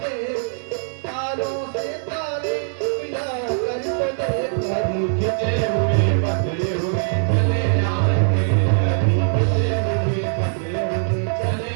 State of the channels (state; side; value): silent; left; digital silence